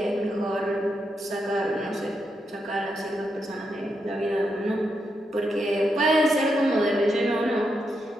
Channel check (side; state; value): both; normal; correlation 0.83